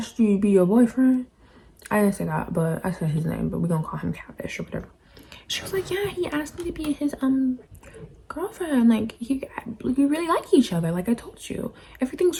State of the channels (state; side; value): identical; both; correlation 1.00